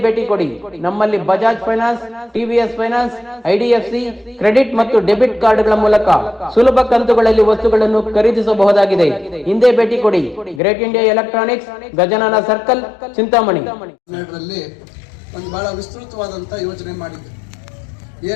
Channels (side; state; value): right; drops out; at 10.6 s